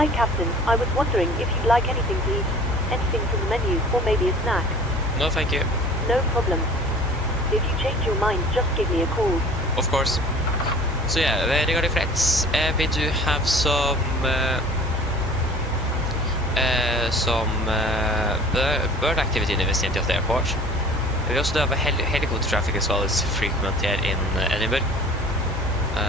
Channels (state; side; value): normal; both; correlation 0.46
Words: Captain. I was wondering if you'd like anything to eat. Anything from the menu, or maybe a snack. No, thank you. No problem. If you change your mind, just give me a call. Of course. So yeah, regarding friends, we do have some bird activity in the vicinity of the airport. We also do have a helicopter traffic as well as frequent here in Edinburgh.